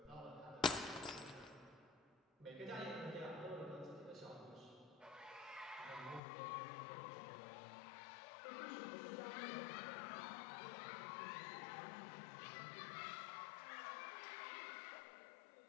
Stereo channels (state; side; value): drops out; right; at 6.2 s